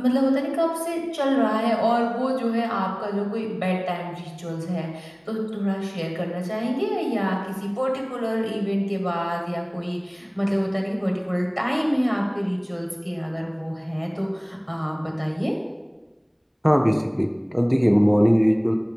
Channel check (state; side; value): identical; both; correlation 1.00